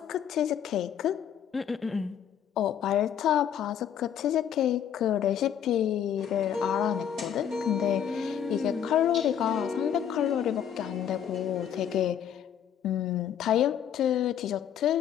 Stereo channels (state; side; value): quieter; right; 9.2 dB